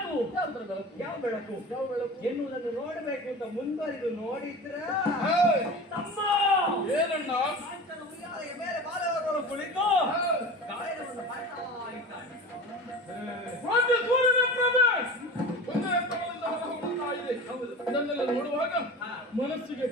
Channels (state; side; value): normal; both; correlation 0.34